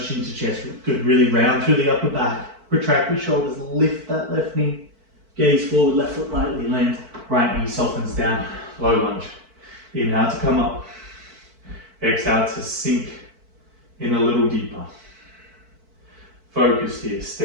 chin to chest. Good, really round through the upper back. Retract the shoulders, lift that left knee. Gaze forward, left foot lightly lands. Right knee softens down, low lunge. Inhale to come up. Exhale to sink in a little deeper. Focus here,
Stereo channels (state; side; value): late; left; 4.5 ms